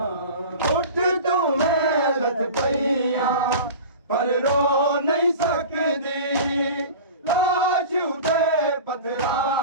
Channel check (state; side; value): inverted; both; correlation -0.35